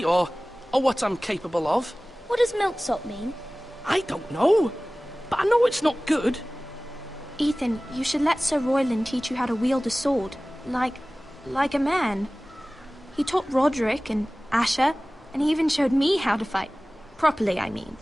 or what I'm capable of. What does milksop mean? I don't know, but I know it's not good. Ethan, you should let Sir Royland teach you how to wield a sword, like a man. He taught Roderick and Asher, and he even showed me how to fight. Properly, I mean.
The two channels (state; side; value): normal; both; correlation 0.98